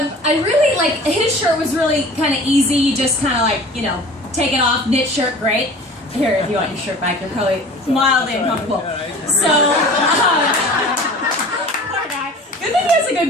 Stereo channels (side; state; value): both; normal; correlation 0.42